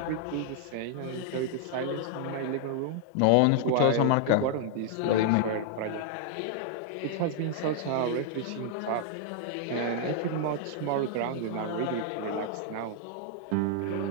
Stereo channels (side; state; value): both; different; correlation 0.00